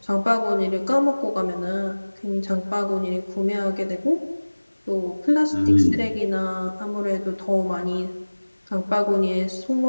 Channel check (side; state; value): both; inverted; correlation -1.00